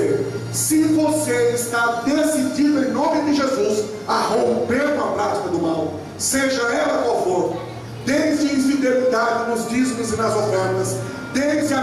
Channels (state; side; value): identical; both; correlation 1.00